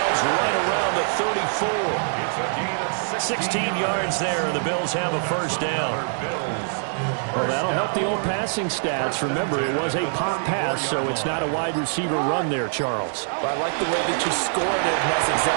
right around the 34. It's a gain of 16 yards there, and the Bills have a first down. Well, that'll help the old passing stats. Remember, it was a pop pass, so it's not a wide receiver run there, Charles. But I like the way that you scored it, and that's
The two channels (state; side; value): silent; left; 63 dB below the other